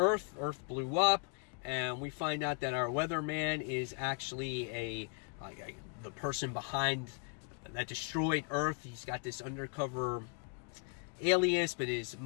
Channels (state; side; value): quieter; right; 38.1 dB